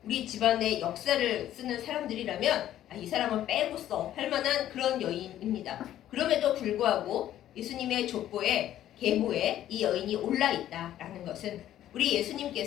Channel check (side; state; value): right; quieter; 12.2 dB